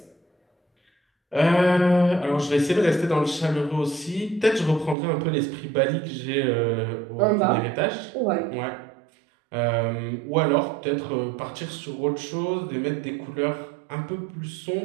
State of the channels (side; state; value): left; drops out; at 5.0 s